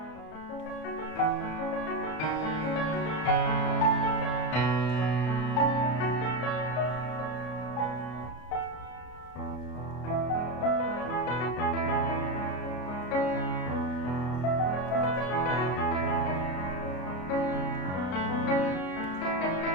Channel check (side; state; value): right; late; 33 ms